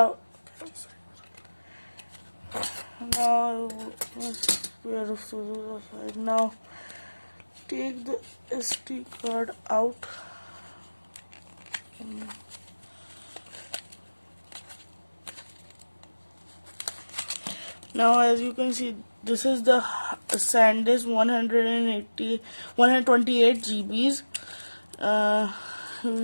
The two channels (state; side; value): inverted; both; correlation -1.00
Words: Now pair of scissors aside. Now take the SD card out. Now as you can see, this is the SanDisk 128 GBs.